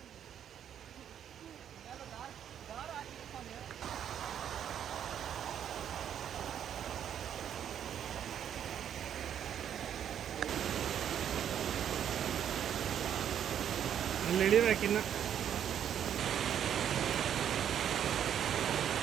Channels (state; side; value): quieter; left; 9.4 dB